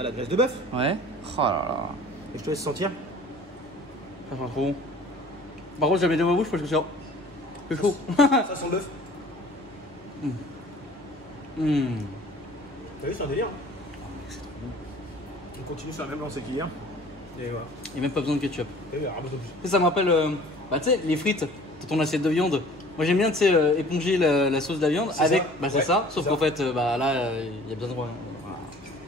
la graisse de bœuf. Ouais. Oh là là. Et je te laisse sentir. Ça sent trop bon. Par contre, j'avais dans ma bouche parce que c'est chaud. Ça sent le bœuf. T'as vu, c'est un délire. C'est trop bon. On continue sur la même lancée qu'hier. Et voilà. Il n'y a même pas besoin de ketchup. T'as vu, ramasse plus. Ça me rappelle, tu sais, les frites dans ton assiette de viande. Moi j'aime bien, tu sais, éponger la sauce de la viande avec. Ça. Bah c'est ça, sauf qu'en fait, là, il y a besoin de. Voilà.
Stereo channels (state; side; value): normal; both; correlation 0.48